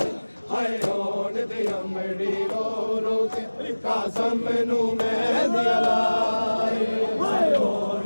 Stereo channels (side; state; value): both; inverted; correlation -1.00